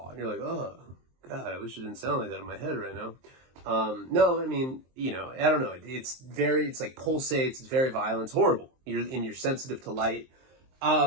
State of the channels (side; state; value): left; late; 23 ms